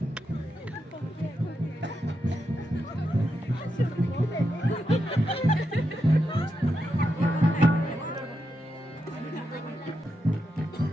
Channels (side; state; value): both; normal; correlation 0.85